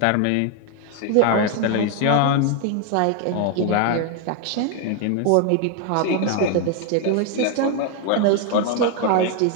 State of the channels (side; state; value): both; different; correlation 0.01